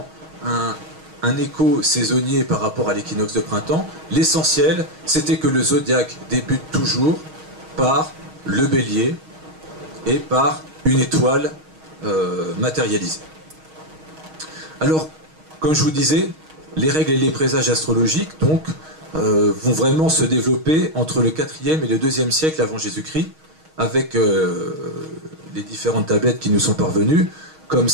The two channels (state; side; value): late; left; 6.4 ms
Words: un écho saisonnier par rapport à l'équinoxe de printemps. L'essentiel, c'était que le zodiaque débute toujours par le bélier et par une étoile matérialisée. Alors, comme je vous disais, les règles et les présages astrologiques donc, vont vraiment se développer entre le 4e et le 2e siècle avant Jésus-Christ, avec les différentes tablettes qui nous sont parvenues, comme